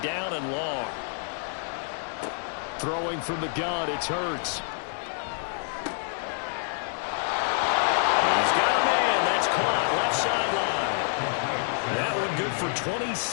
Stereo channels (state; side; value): silent; right; digital silence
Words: down and long. Throwing from the gun, it's Hurts. He's got a man. That's caught. Left sideline. That one good for